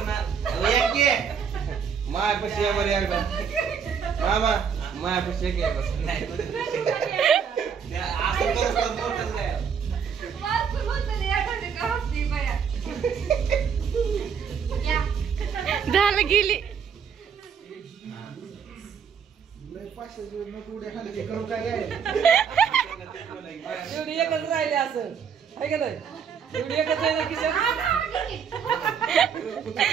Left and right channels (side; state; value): left; quieter; 7.0 dB